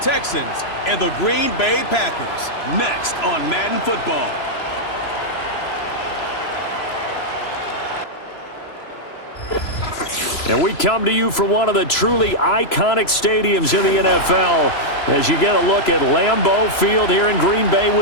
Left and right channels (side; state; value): right; late; 3.0 ms